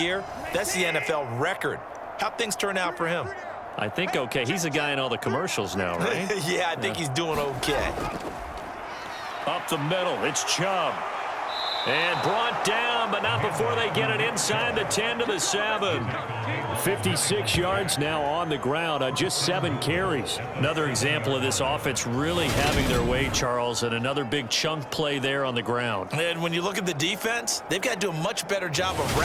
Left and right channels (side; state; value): both; identical; correlation 1.00